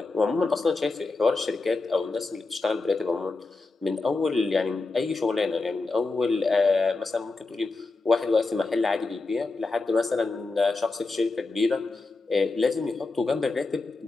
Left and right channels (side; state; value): right; quieter; 3.6 dB